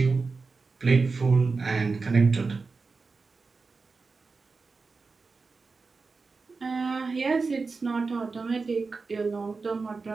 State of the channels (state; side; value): quieter; left; 4.3 dB